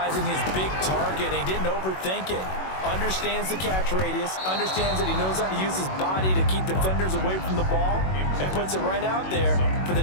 his big target. He didn't overthink it. Understands the catch radius. Understands that he knows how to use his body to keep defenders away from the ball. And puts it right out there for the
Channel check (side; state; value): right; late; 21 ms